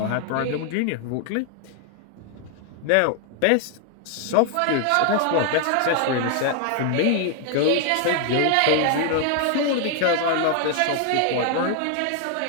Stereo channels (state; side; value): different; both; correlation 0.00